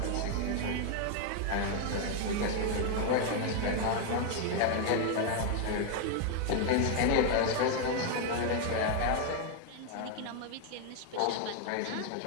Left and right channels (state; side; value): different; both; correlation 0.00